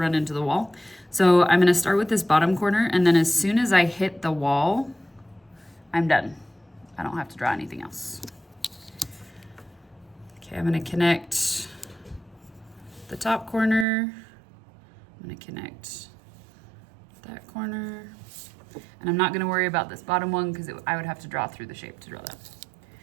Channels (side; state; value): left; drops out; at 13.9 s